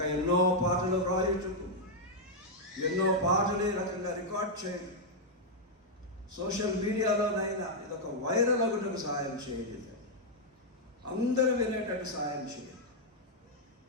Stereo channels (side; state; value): both; normal; correlation -0.03